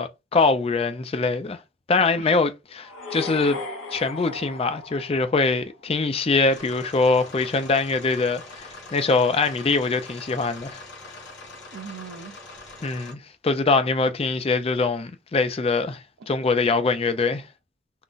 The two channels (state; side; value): quieter; right; 3.4 dB